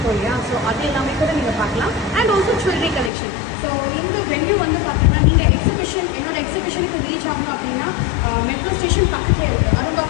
இல்லையா, ஸோ அது எல்லாமே கூட நீங்கள் பார்க்கலாம். And also jewellery collection. So இந்த வென்யூ வந்து பார்த்தீங்கன்னா நீங்கள் என்னோட எக்ஸிபிஷனுக்கு ரீச் ஆகணும் அப்படின்னா மெட்ரோ ஸ்டேஷன் பக்கத்துலேயே இருக்குது.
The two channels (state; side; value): drops out; right; at 3.1 s